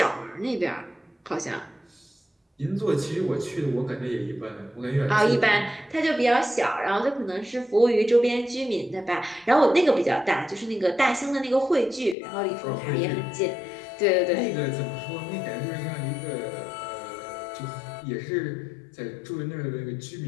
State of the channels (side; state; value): right; drops out; at 12.2 s